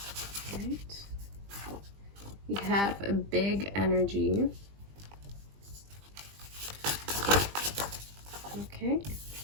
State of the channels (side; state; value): left; late; 20 ms